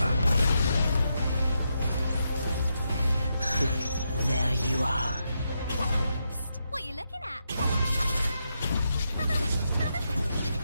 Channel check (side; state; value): both; inverted; correlation -0.83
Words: There you are. Psst, what are you looking at?